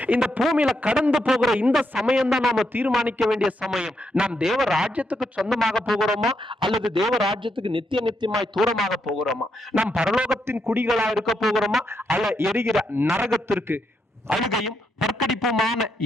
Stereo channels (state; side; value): normal; both; correlation 0.80